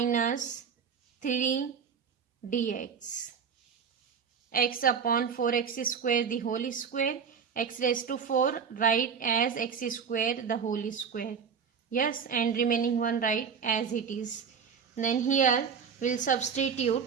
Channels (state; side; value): quieter; left; 6.6 dB